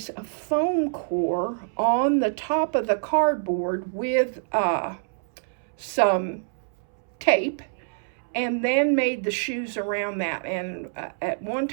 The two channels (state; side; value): silent; left; 61 dB below the other